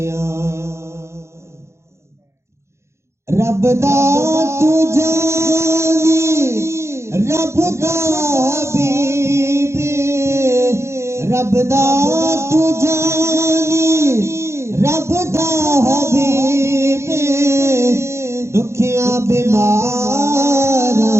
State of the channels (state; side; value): late; left; 0.13 ms